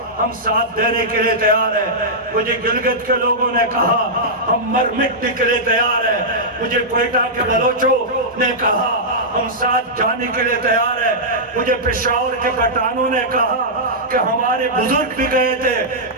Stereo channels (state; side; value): normal; both; correlation -0.11